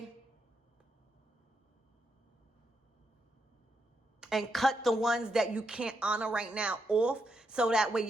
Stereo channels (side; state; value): both; normal; correlation 0.82